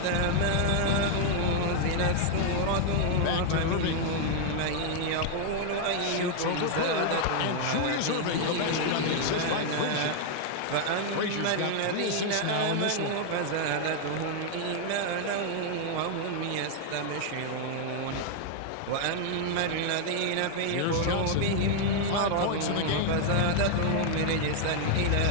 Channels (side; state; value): both; different; correlation 0.00